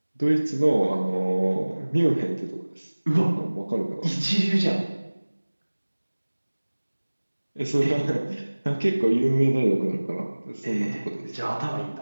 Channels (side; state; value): both; inverted; correlation -1.00